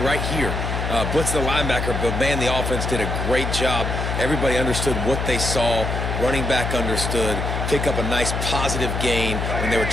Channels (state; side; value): noise; left; hum, 2 dB below the sound